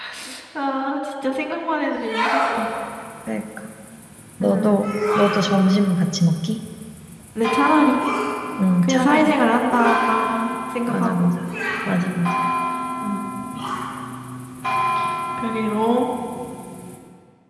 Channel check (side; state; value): both; identical; correlation 1.00